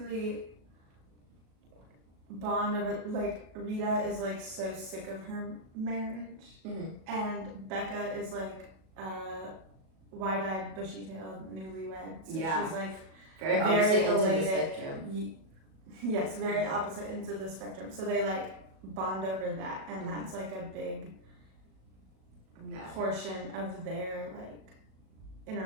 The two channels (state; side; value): late; left; 37 ms